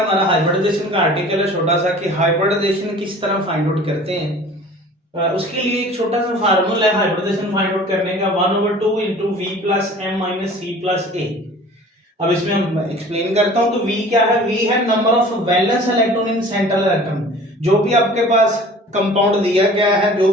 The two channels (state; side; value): normal; both; correlation 0.45